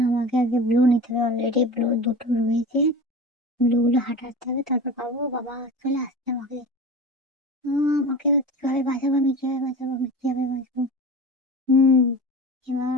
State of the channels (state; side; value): normal; both; correlation 0.32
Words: আমাকে আগে ব্লু নিতে হবে, অলরেডি ব্লু দুটো রয়েছে। ব্লুগুলো হাঁটাতে হবে, তারপর পাবো। বাবা চলে আসছে আমাকে। আমাকে কিভাবে বাঁচাবো, আমি কিভাবে বাঁচাবো, আমি কিভাবে বাঁচবো? হুম